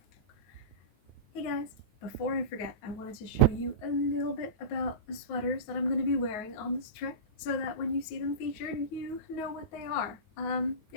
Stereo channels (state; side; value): late; right; 9.4 ms